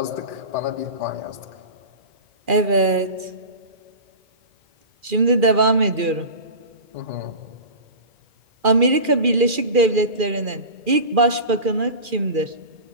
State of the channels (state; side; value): late; left; 2.4 ms